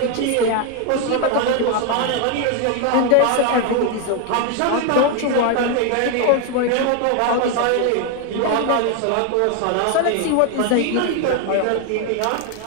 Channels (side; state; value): both; different; correlation 0.01